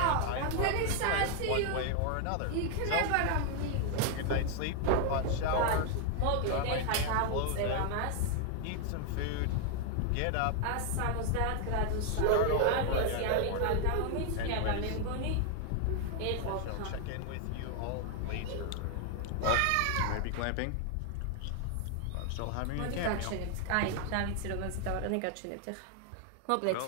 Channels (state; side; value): different; both; correlation 0.00